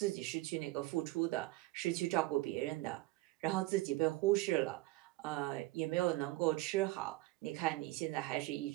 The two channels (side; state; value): left; quieter; 19.7 dB